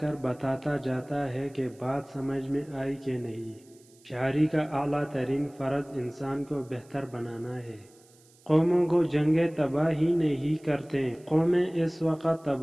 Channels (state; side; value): noise; right; hiss, 29 dB below the sound